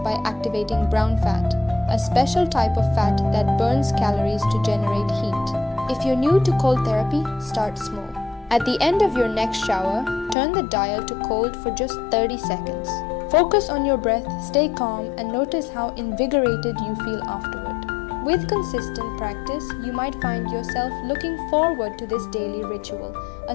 activating brown fat, a special type of fat that burns calories to generate heat. If you're new to cold therapy, start small. At the end of your next shower, turn the dial to cold for just 30 seconds. Focus on your breath, stay calm, and notice how invigorated you feel afterward. With consistent practice, you might find yourself looking forward to this daily ritual, a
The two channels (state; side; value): drops out; right; at 10.4 s